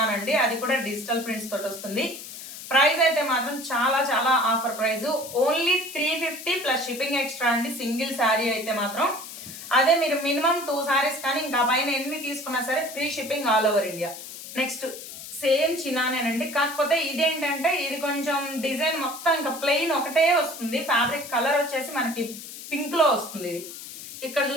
అండి. అది కూడా డిజిటల్ ప్రింట్స్ తోటి వస్తుంది. ప్రైస్ అయితే మాత్రం చాలా చాలా offer price, only 350 plus shipping extra అండి. సింగిల్ శారీ అయితే మాత్రం. అదే మీరు మినిమం 2 శారీస్ కానీ ఇంకా పైన ఎన్ని తీసుకున్నా సరే free shipping all over India. Next same చినానేనండి, కాకపోతే ఇదేంటంటే ఇది కొంచెం డిజైన్ మొత్తం ఇంకా ప్లెయిన్ ఒకటే వస్తుంది. ఫ్యాబ్రిక్ కలర్ వచ్చేసి మనకి పింక్ లో వస్తుంది. ఇది ఇక్కడ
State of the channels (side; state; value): left; noise; hiss, 12 dB below the sound